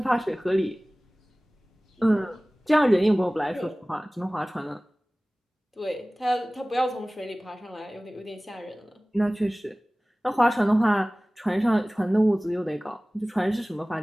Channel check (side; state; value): both; normal; correlation 0.98